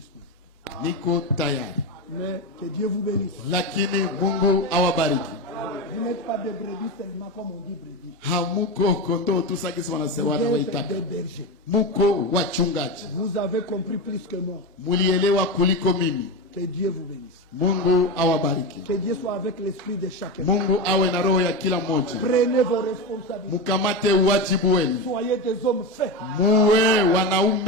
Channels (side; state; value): both; normal; correlation 0.18